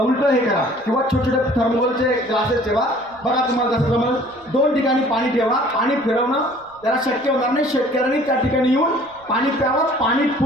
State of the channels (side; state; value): right; noise; rumble, 29 dB below the sound